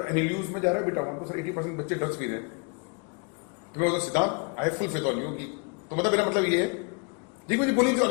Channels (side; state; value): right; quieter; 33.1 dB